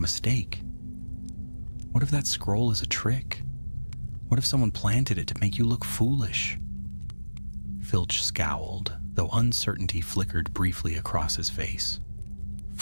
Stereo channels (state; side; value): inverted; both; correlation -1.00